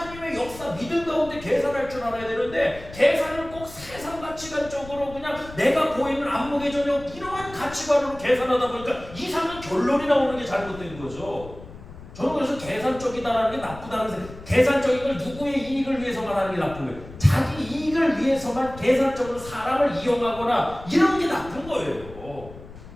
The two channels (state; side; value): noise; left; rumble, 16 dB below the sound